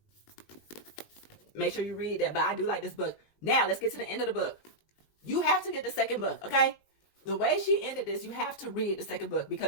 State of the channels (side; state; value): right; late; 19 ms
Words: Make sure you read that. But I do like this book. Now, let's get to the end of the book. You have to get the second book, okay? The way she ended this, you have to read the second book,